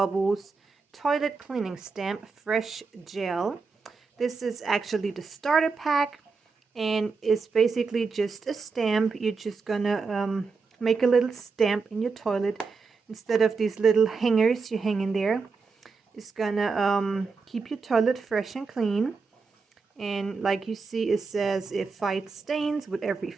Toilet Cleaning Stamp Fresh Gel. This is actually the starter pack and it's basically just a stamp. You're just gonna make a little stamp in your toilet instead of these little hangers you hang in there. It's gonna keep your toilet fresh and clean, and like you see, it says it fights stains with every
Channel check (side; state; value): left; quieter; 4.7 dB